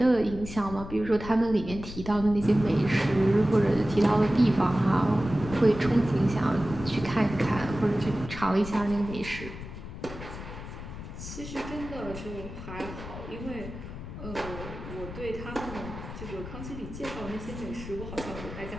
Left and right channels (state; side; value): noise; left; rumble, 10 dB below the sound